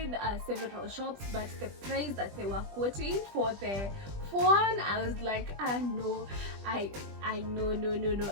several shops, but the price that they were quoting for the phone, I was like, no, I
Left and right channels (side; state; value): left; late; 20 ms